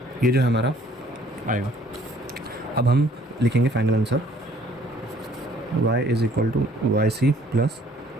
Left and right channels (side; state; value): both; normal; correlation 0.59